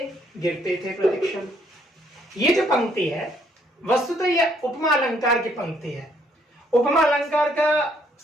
गिरते थे प्रतिक्षण। ये जो पंक्ति है वस्तुतः यह उपमा अलंकार की पंक्ति है। उपमा अलंकार का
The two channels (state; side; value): normal; both; correlation 0.68